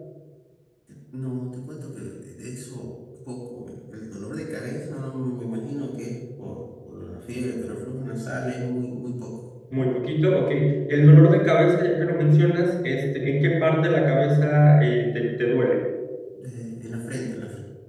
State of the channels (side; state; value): both; identical; correlation 1.00